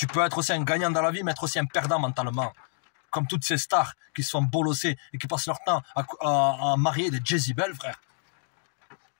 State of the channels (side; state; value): right; silent; digital silence